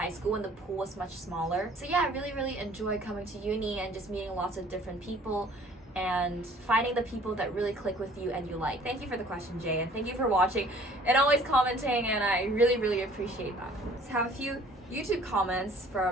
school when the pool was much smaller. So yeah, I really, really enjoy coming to uni and just meeting lots of different people and finding the people that really click with you and you like. Thank you for the question, Jay, and thank you for watching and always commenting, and I really, really appreciate that. Let's have a few YouTube comments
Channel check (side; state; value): both; normal; correlation 0.54